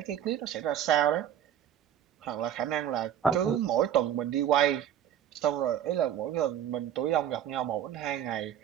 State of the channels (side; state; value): left; quieter; 10.1 dB